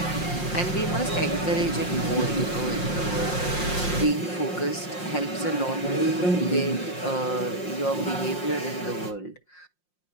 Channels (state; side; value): late; right; 5.6 ms